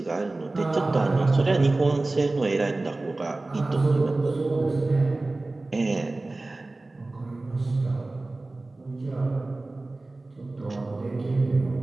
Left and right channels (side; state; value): left; quieter; 3.1 dB